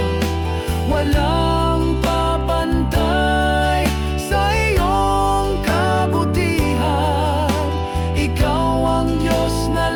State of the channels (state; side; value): identical; both; correlation 1.00